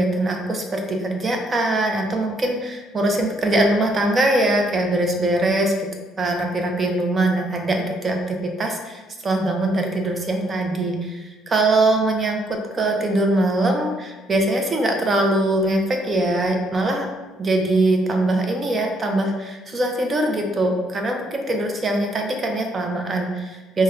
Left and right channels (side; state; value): both; normal; correlation 0.71